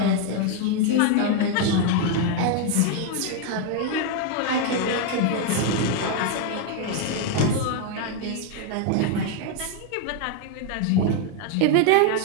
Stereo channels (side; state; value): both; different; correlation 0.01